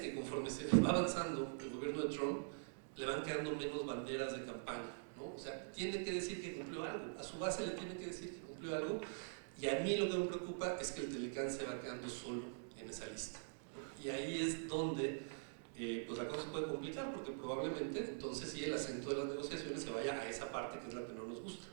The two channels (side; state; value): left; silent; digital silence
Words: conforme se va avanzando el gobierno de Trump, le van quedando menos banderas de campaña, ¿no? O sea, tiene que decir que cumplió algo, a su base le tiene que decir que cumplió algo, y a mí lo que me preocupa es que el Telecán se va quedando solo en esa lista, ¿no? Y ahí es donde pues la cosa se puede complicar, porque probablemente entonces sí el acento de las negociaciones se vaya a esa parte que es la que no nos gusta,